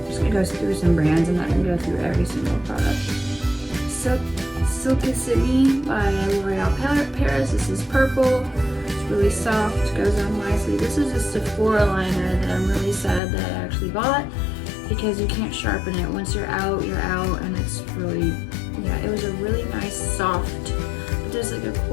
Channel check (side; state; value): right; drops out; at 13.2 s